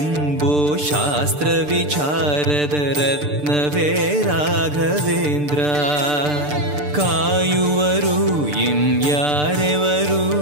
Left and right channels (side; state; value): left; late; 6.8 ms